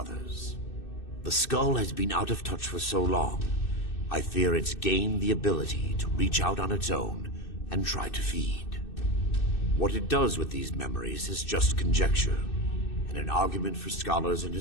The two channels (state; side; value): late; right; 2.6 ms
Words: The skull has been out of touch for so long, I fear it's gained the ability to reach out on its own and try to feed. What it does with these memories is just conjecture, and an argument for scholars and